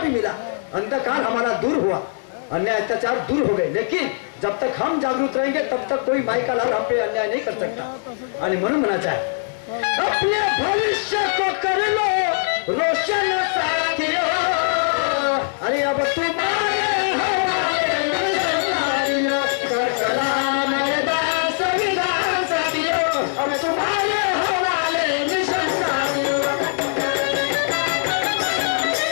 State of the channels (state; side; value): silent; right; 64 dB below the other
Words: मिला। अंधकार हमारा दूर हुआ, अन्याय अत्याचार दूर हो गए। लेकिन जब तक हम जागरूक रहेंगे तब तक कोई माई का लाल हम पे अन्याय नहीं कर सकता। आणि म्हणून म्हणायचं आहे, अपने भविष्य को कर लो रोशन साथियों, अरे अब तुम्हारे हवाले संसारियों, कर कलाम मैदान संविधान साथियों, अब तुम्हारे हवाले मिशन साथियों।